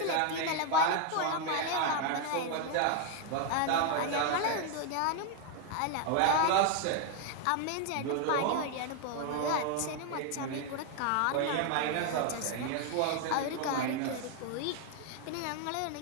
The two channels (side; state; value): both; different; correlation 0.00